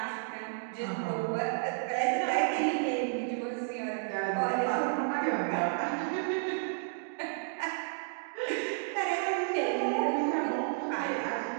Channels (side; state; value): left; silent; digital silence